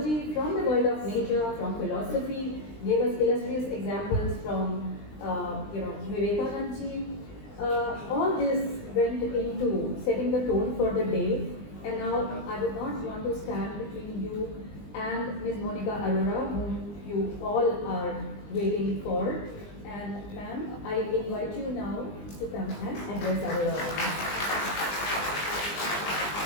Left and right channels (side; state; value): right; late; 20 ms